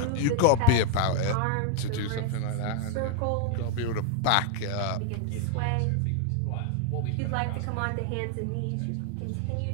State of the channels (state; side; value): different; both; correlation 0.01